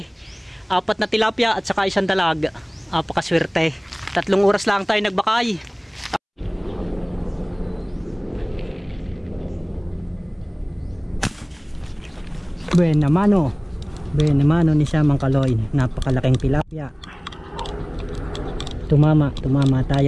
4 na tilapia at saka 1 dalag. Apakaswerte. 3 oras lang tayo nagbakay. Buena mano ni siya mga kaloy. Napakalaking tilapia. Tumama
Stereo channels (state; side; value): identical; both; correlation 1.00